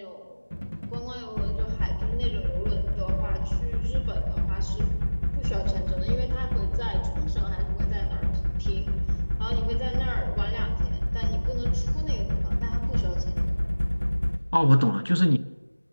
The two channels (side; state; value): both; inverted; correlation -1.00